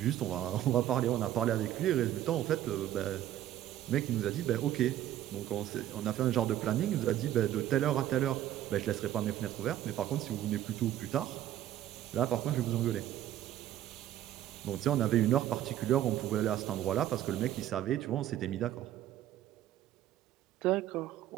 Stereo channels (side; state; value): left; quieter; 12.3 dB